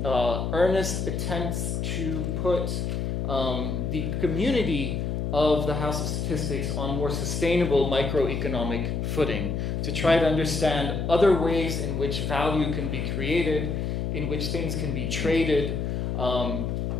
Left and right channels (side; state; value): left; noise; hum, 1 dB below the sound